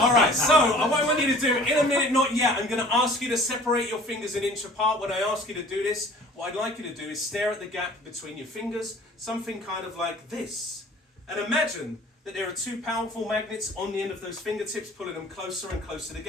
so what I want you to do, in a minute, not yet, I'm going to ask you to separate your fingers an inch apart. When I ask you to do this, what I'd like you to do is stare at the gap between your fingers, something kind of like this. And imagine that there are 2 powerful magnets on the end of those fingertips, pulling them closer and closer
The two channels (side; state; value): both; normal; correlation 0.48